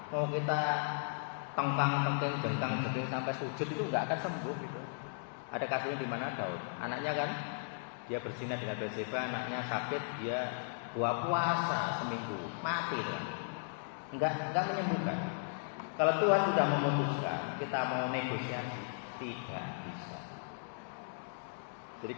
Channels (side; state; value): right; silent; digital silence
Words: Mau kita tengkang-tengking, jengkang-jengking sampai sujud itu nggak akan sembuh gitu. Ada kasusnya di mana Daud, anaknya kan dia berzina dengan Batseba, anaknya sakit, dia puasa seminggu, mati tuh. Enggak menyembuhkan. Kalau Tuhan sudah memutuskan, kita mau negosiasi, tidak bisa. Jadi